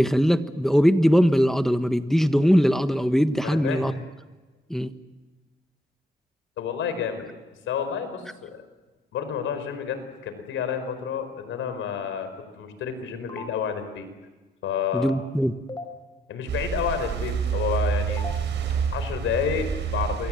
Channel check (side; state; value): both; normal; correlation 0.75